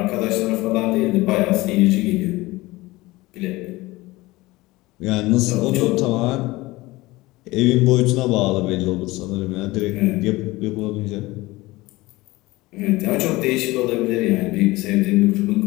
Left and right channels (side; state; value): right; quieter; 20.3 dB